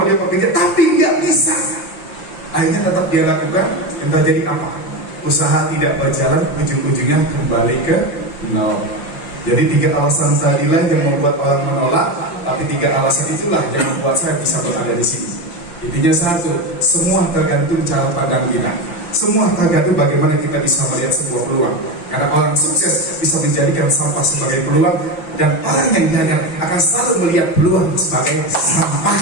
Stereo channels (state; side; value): late; right; 5.8 ms